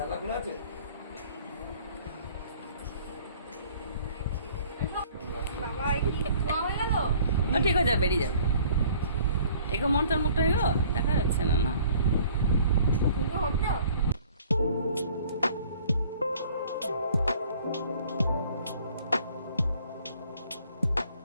খোলা আছে? বাবা কি ধোয়া হয়ে গেল? ঠিক হয়ে যাবে, বেরিয়ে যাবে। এগো মন তোর মুখটা এগো দেখা যাচ্ছে না না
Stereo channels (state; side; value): inverted; both; correlation -0.55